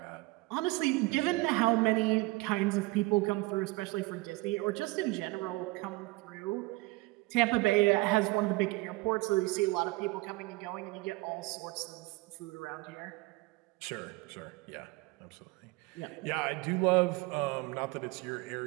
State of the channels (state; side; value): quieter; left; 22.6 dB